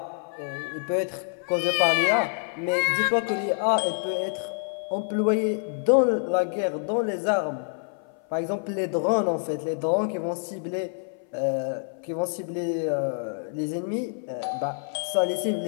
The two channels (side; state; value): right; silent; 57 dB below the other